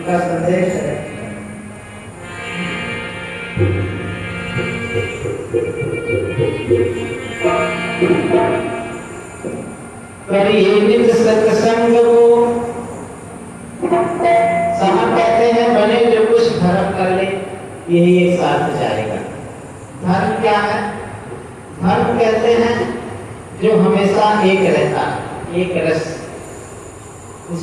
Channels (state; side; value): identical; both; correlation 1.00